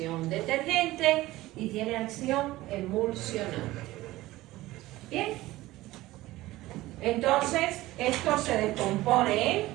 detergente y tiene acción emulsionante. Bien. Entonces, esto se descompone en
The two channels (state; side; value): quieter; left; 17.5 dB